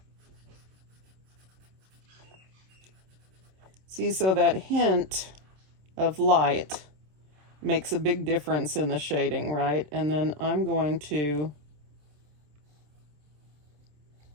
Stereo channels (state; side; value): late; left; 27 ms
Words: See, so that hint of light makes a big difference in the shading, right? And then I'm going to